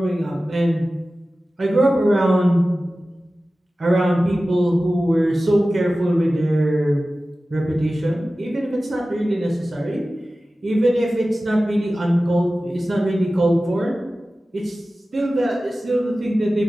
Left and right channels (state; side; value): normal; both; correlation 0.96